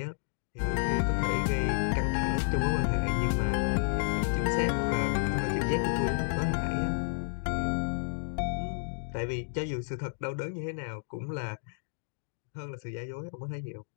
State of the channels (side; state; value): right; silent; digital silence